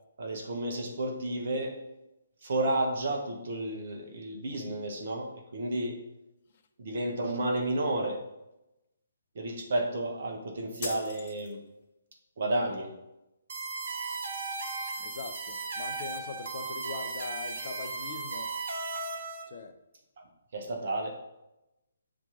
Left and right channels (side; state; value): both; inverted; correlation -0.71